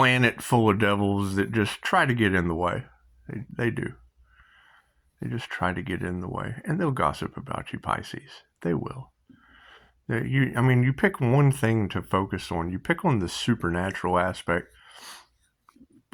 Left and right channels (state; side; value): identical; both; correlation 1.00